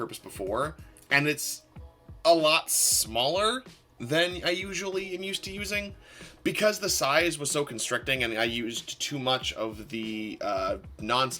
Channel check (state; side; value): identical; both; correlation 1.00